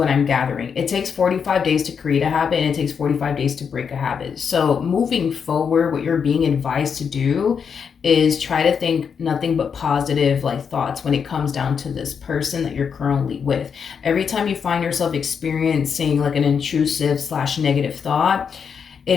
I'm gathering. It takes 45 days to create a habit, and it takes 45 days to break a habit. So moving forward, what you're being advised to do is try to think nothing but positive like thoughts when it comes down to this person that you're currently with. Every time you find yourself experiencing like an intrusive / negative thought, it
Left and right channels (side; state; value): right; quieter; 6.6 dB